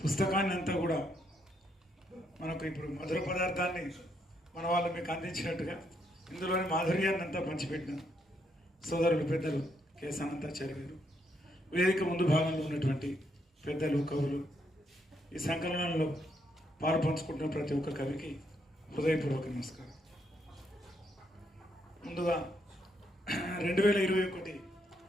అంతా కూడా మనకు ఇప్పుడు మధుర పదార్థాన్ని మన వాళ్ళు మీకు అందించినట్టుగా ఇందులోని మాధుర్యాన్ని అంతా పంచిపెట్టిన సోదరులు, పెద్దలు కెఎస్ అనంతాచార్య గారు, వేదిక ముందు భాగంలో ఉన్నటువంటి పెద్దలు, కవులు, ఈ సంకలనంలో పాలు పంచుకుంటున్న ప్రతి ఒక్క కవికి హృదయపూర్వక నమస్కారం. ముందుగా 2021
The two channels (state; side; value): normal; both; correlation 0.76